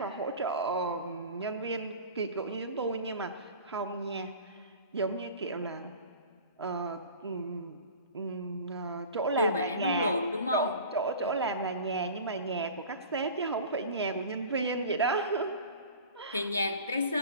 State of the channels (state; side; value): inverted; both; correlation -0.40